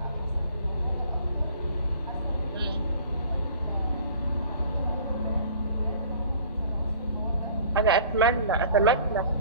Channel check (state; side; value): inverted; both; correlation -0.49